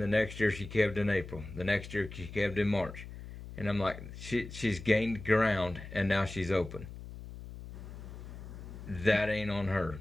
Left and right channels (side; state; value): left; noise; hum, 12 dB below the sound